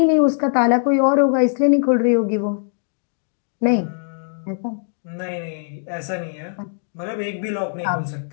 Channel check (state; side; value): silent; right; digital silence